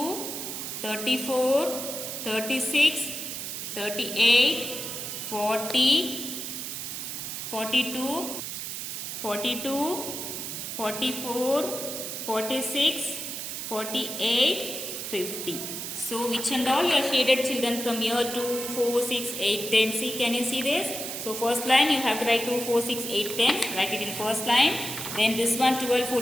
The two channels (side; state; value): right; noise; hiss, 6 dB below the sound